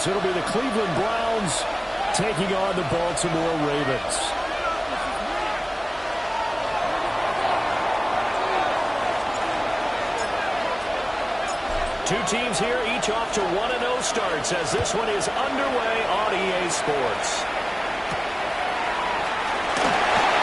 it'll be the Cleveland Browns taking on the Baltimore Ravens. Two teams here, each off to 1-0 starts as this one is underway on EA Sports.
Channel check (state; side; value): identical; both; correlation 1.00